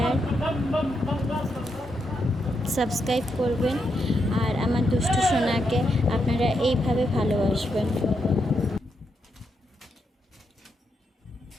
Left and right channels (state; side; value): normal; both; correlation 0.82